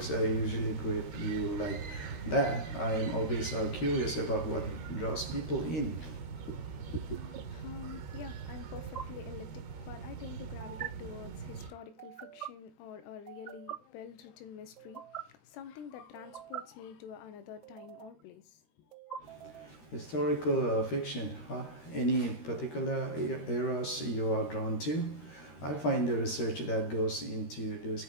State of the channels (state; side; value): late; right; 13 ms